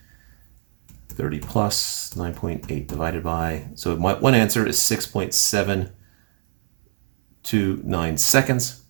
30 plus 9.8 divided by, so my one answer is 6.729 seconds.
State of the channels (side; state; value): left; silent; 59 dB below the other